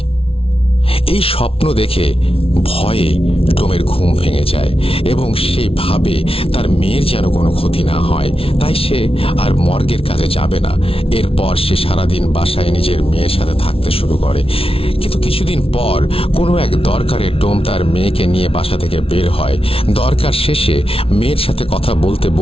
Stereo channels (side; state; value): right; late; 0.27 ms